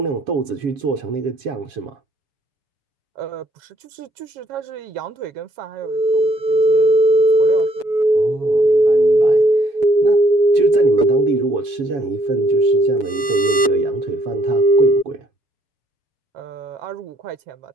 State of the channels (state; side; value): late; left; 7.1 ms